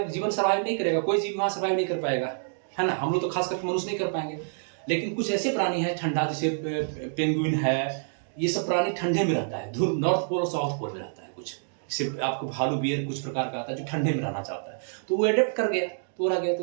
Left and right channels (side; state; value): left; silent; digital silence